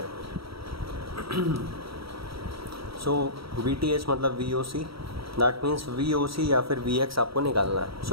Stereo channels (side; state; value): left; late; 0.75 ms